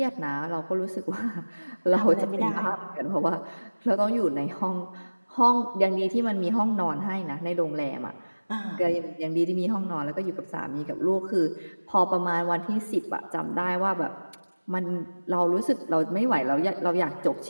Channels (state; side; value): inverted; both; correlation -1.00